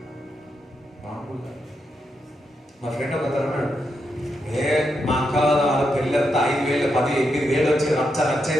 మా ఫ్రెండ్ ఒక అన్నాడు, మా అక్క వాళ్ళ పెళ్ళి అంతా 5,000 10 8,000 వచ్చి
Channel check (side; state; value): both; normal; correlation 0.83